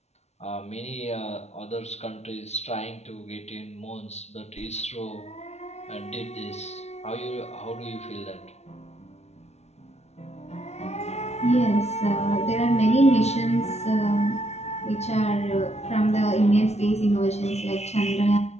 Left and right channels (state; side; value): late; right; 0.31 ms